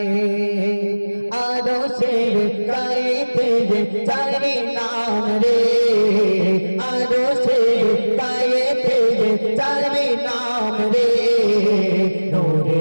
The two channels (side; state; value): both; inverted; correlation -1.00